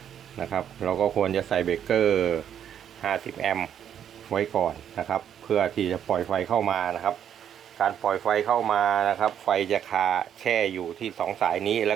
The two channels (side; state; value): left; quieter; 9.3 dB